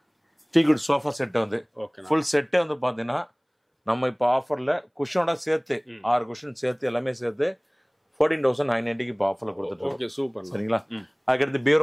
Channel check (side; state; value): both; identical; correlation 1.00